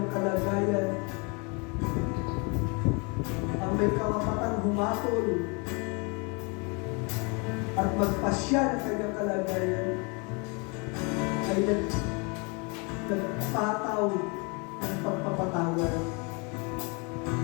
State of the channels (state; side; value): quieter; right; 31.6 dB